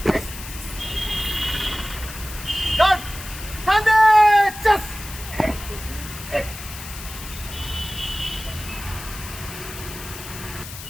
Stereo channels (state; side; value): noise; left; hiss, 12 dB below the sound